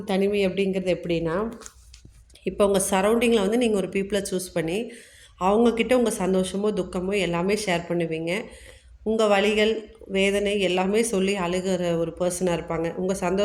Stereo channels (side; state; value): both; identical; correlation 1.00